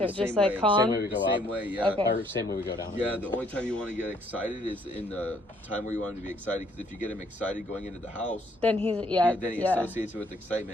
same Just like way. calm? Same way we the go same up. way? Yeah. Okay. Or same way we go down. Yeah, the only time you want to get excited is in the time where you want him to be excited. Because if you get him excited going into the house, Then he's then he yeah. associates it with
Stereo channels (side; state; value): both; normal; correlation 0.65